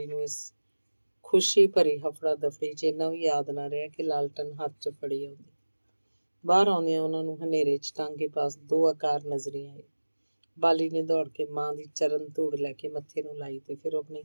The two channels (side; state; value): both; inverted; correlation -1.00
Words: ਨੂੰ ਇਸ ਖੁਸ਼ੀ ਭਰੀ ਹਫੜਾ ਦਫੜੀ 'ਚ ਇੰਨਾ ਵੀ ਯਾਦ ਨਾ ਰਿਹਾ ਕਿ ਲਾਲਟਨ ਹੱਥ 'ਚ ਫੜੀ ਆਉਂਦੀ। ਬਾਹਰ ਆਉਂਦਿਆਂ ਉਹਨਾਂ ਨੂੰ ਹਨੇਰੇ 'ਚ ਟਾਂਗੇ ਪਾਸ ਦੋ ਆਕਾਰ ਨਜ਼ਰੀ ਆਏ। ਬਾਲੀ ਨੇ ਦੌੜ ਕੇ ਮਾਂ ਦੀ ਚਰਨ ਧੂੜ ਲੈ ਕੇ ਮੱਥੇ ਨੂੰ ਲਾਈ ਤੇ ਫਿਰ ਆਪਣੀ